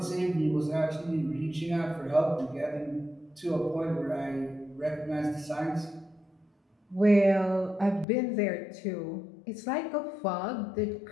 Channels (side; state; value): right; drops out; at 8.1 s